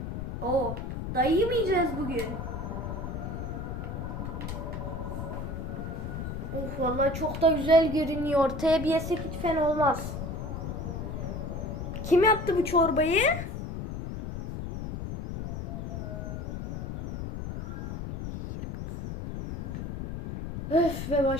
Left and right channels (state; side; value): noise; left; rumble, 5 dB below the sound